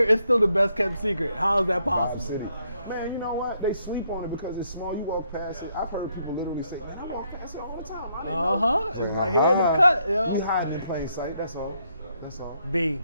it's still the best kept secret. How is that possible? Man, you know what? They sleep on it because it's small. You walk past it. I've heard people literally say, man, I walk past it all the time. I didn't know. It's right here in the cut, yo. You hiding in plain sight. That's all. B,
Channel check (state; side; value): inverted; both; correlation -0.75